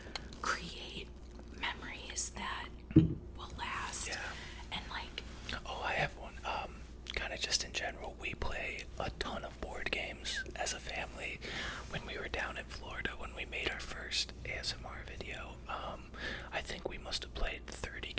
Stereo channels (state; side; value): identical; both; correlation 1.00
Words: create memories that will last. Yeah. And like, oh, I have one. Kind of just in general, we play a ton of board games as a family. When we were down in Florida, when we made our first ASMR video, I think we must have played 30